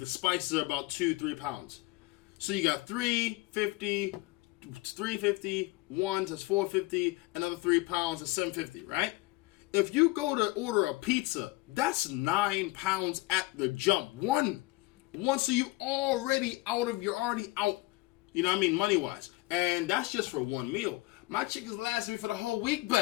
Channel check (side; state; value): right; quieter; 20.8 dB